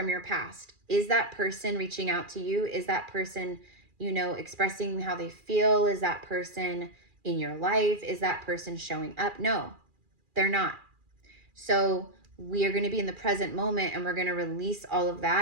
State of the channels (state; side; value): late; left; 2.4 ms